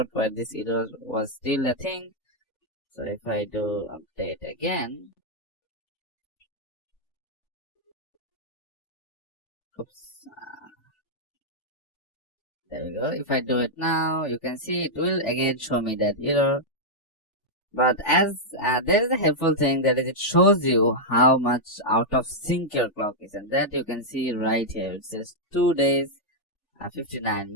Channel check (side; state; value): right; late; 3.5 ms